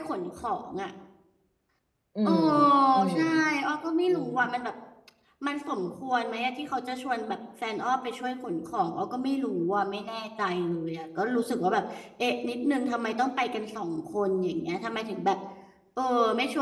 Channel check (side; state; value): both; identical; correlation 1.00